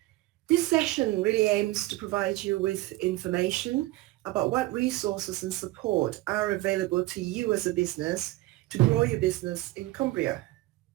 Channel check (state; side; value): quieter; left; 18.8 dB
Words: This session really aims to provide you with information about what resources and support are available to you as a business to grow your business in Cumbria.